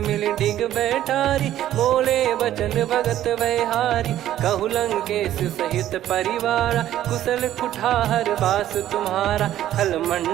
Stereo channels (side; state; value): left; quieter; 12.5 dB